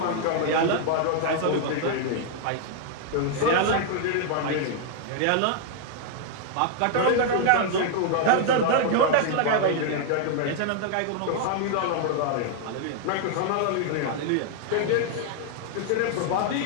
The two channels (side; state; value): both; different; correlation -0.01